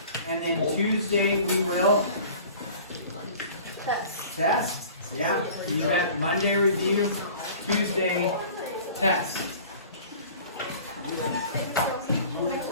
and then Tuesday we will test. Yeah, you got Monday review, Tuesday test.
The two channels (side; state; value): both; inverted; correlation -0.45